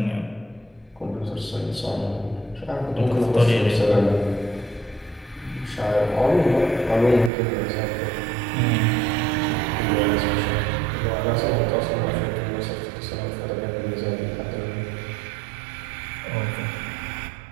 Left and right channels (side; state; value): left; drops out; at 7.3 s